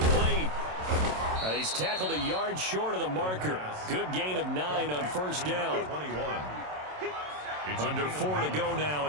And he's tackled a yard short of the marker. Good gain of 9 on first down. 21. Under 4 to go now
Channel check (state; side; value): late; left; 27 ms